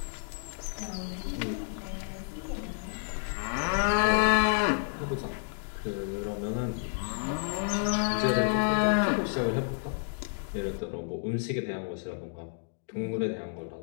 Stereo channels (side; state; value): right; silent; digital silence